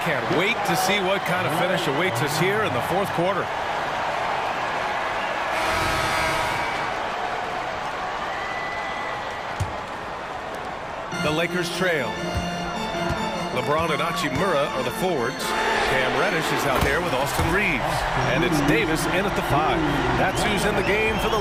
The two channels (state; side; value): identical; both; correlation 1.00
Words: wait to see what kind of finish awaits us here in the fourth quarter. The Lakers trail. LeBron and Hachimura are the forwards. Cam Reddish is out there with Austin Reeves. And it's Davis in at the 5. That's who's in the game for the